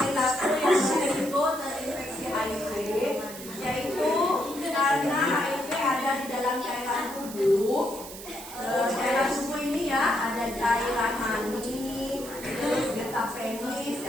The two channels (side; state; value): right; noise; hiss, 13 dB below the sound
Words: berisiko terinfeksi HIV, yaitu karena HIV ada di dalam cairan tubuh. Cairan tubuh ini ya ada cairan mani, terus getah penis,